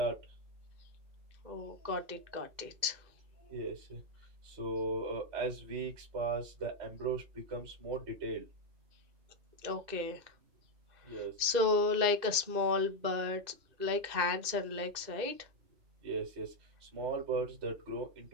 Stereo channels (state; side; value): late; left; 2.1 ms